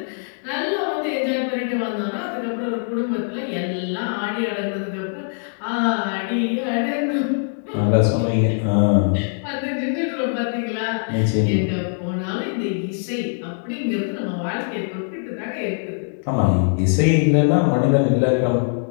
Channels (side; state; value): right; silent; 63 dB below the other